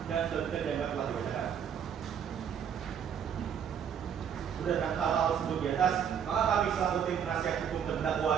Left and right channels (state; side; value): quieter; left; 8.2 dB